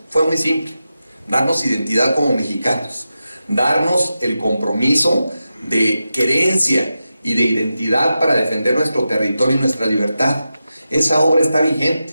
fue muy simple: darnos identidad como mexicanos, darnos el compromiso de querencia y de identidad para defender nuestro territorio y nuestra libertad. Esa obra está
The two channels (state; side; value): inverted; both; correlation -0.91